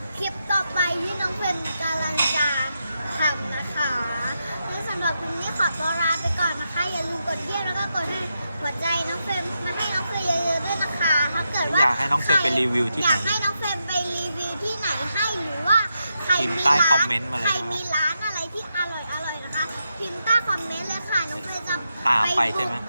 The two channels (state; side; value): inverted; both; correlation -0.85